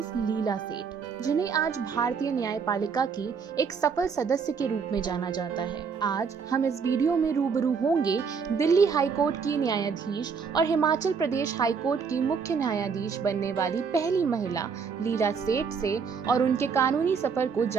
लीला सेठ, जिन्हें आज भारतीय न्यायपालिका की एक सफल सदस्य के रूप में जाना जाता है। आज हम इस वीडियो में रूबरू होंगे दिल्ली हाईकोर्ट की न्यायाधीश और हिमाचल प्रदेश हाईकोर्ट की मुख्य न्यायाधीश बनने वाली पहली महिला लीला सेठ से, और उनके कानूनी सफर को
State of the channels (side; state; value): left; quieter; 5.9 dB